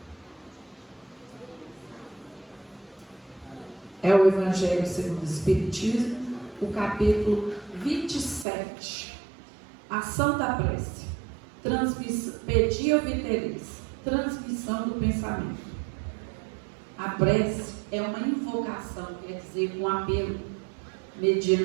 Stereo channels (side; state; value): left; drops out; at 8.5 s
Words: É o Evangelho segundo o Espiritismo, o capítulo 27. Ação da prece. Pedia viteris. transmissão do pensamento. A prece é uma invocação, quer dizer, um apelo,